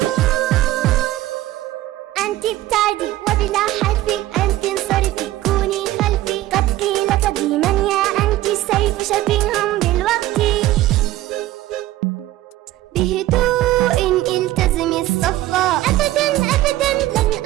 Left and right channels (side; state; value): left; quieter; 15.5 dB